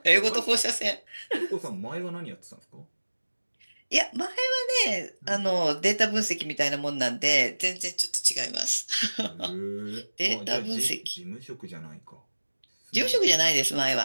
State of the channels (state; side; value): inverted; both; correlation -1.00